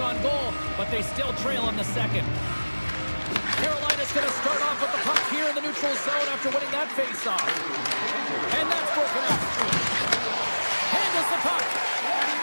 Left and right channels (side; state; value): both; inverted; correlation -1.00